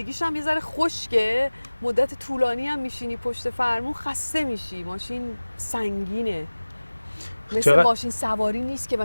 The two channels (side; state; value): both; inverted; correlation -1.00